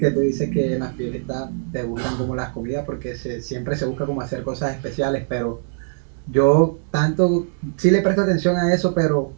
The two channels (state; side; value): silent; left; 64 dB below the other